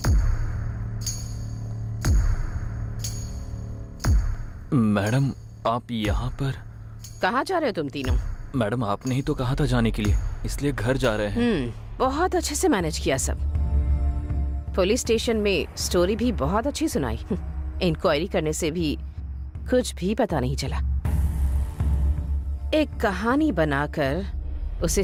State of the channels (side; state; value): both; identical; correlation 1.00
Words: मैडम आप यहाँ पर? कहाँ जा रहे हो तुम तीनों? मैडम आपने ही तो कहा था जाने के लिए, इसलिए घर जा रहे हैं। बहुत अच्छे से मैनेज किया सब। पुलिस स्टेशन में स्टोरी भी बहुत अच्छी सुनाई। इंक्वायरी करने से भी कुछ भी पता नहीं चला। एक कहानी बनाकर उसे